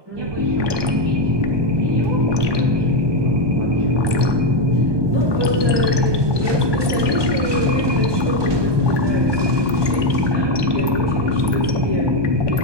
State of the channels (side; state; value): left; late; 1.2 ms